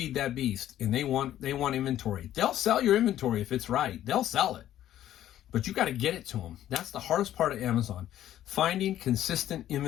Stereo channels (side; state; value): right; quieter; 12.3 dB